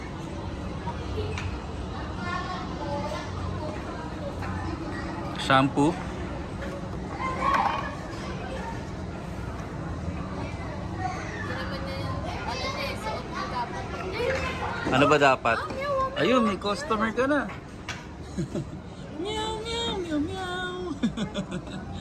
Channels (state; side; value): identical; both; correlation 1.00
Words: Shampoo. Ano ba dapat? Ayun, may customer ka na. Meow, meow, meow, meow.